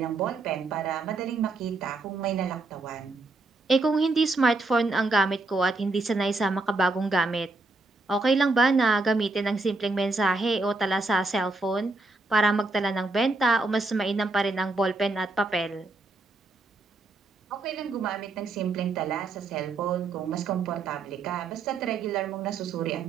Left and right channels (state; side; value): quieter; left; 3.3 dB